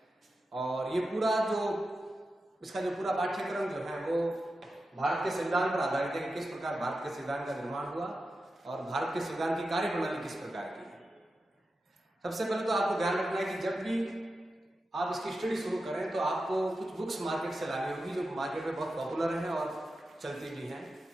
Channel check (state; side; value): normal; both; correlation 0.91